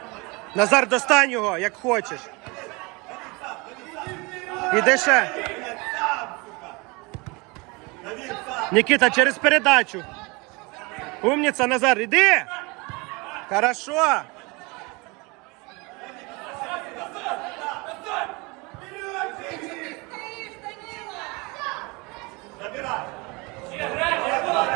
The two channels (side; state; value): left; quieter; 26.7 dB